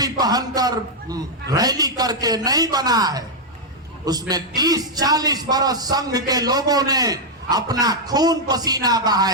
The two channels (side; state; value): both; normal; correlation -0.02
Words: पहनकर रैली करके नहीं बना है, उसमें 30-40 बरस संघ के लोगों ने अपना खून पसीना